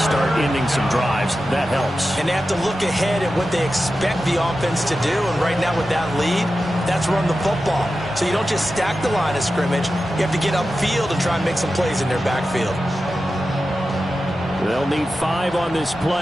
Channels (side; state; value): both; normal; correlation 0.92